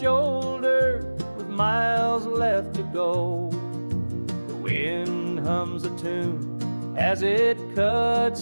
with miles left to go. The wind hums a tune as it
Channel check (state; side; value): inverted; both; correlation -1.00